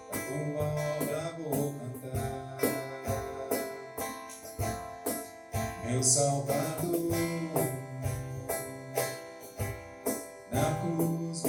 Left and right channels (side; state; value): both; identical; correlation 1.00